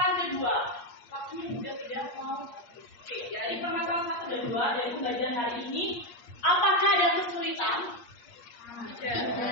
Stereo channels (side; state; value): right; late; 8.5 ms